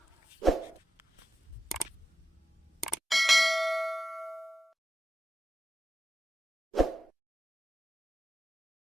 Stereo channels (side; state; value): both; normal; correlation 0.90